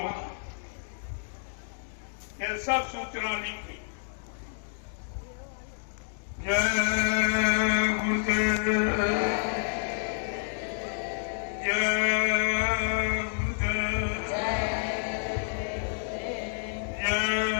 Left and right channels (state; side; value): silent; right; digital silence